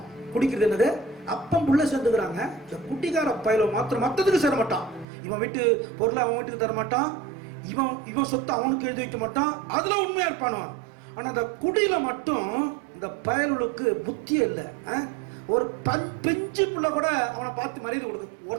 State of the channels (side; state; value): left; drops out; at 5.1 s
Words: குடிக்கிறது என்னது? அப்பம் புள்ள சேர்ந்துக்கிறாங்க. இந்த குடிகார பயல மாத்திரம் மற்றதுக்கு சேர மாட்டான். இவன் வீட்டு பொருளை அவன் வீட்டுக்கு தர மாட்டான். இவன் சொத்தை அவனுக்கு எழுதி வைக்க மாட்டான். அதுல உண்மையா இருப்பானுவான். ஆனா அந்த குடியில மட்டும் இந்த பயலுக்கு புத்தியே இல்லை. ஒரு பெஞ்சு புள்ள கூட அவனை பார்த்து மரியாதை கொடுக்கு.